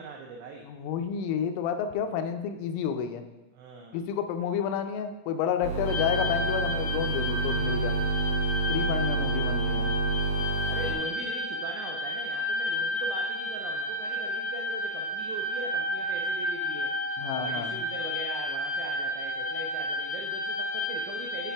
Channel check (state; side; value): normal; both; correlation -0.08